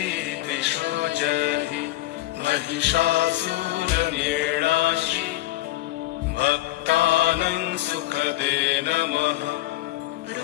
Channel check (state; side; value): quieter; right; 16.6 dB